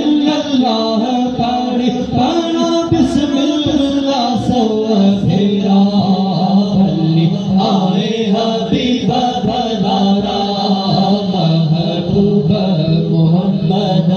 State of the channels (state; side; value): identical; both; correlation 1.00